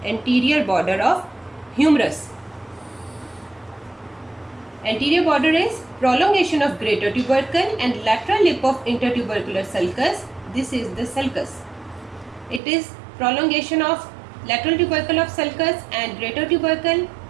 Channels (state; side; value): drops out; left; at 12.6 s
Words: anterior border of humerus. Anterior border is prolongation of greater tubercle and lateral lip of intertubercular sulcus. This is the sulcus. It is prolongation of lateral tubercle of sulcus and greater tubercle,